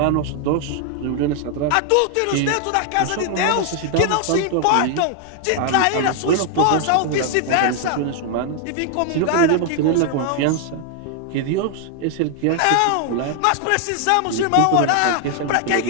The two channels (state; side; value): different; both; correlation 0.00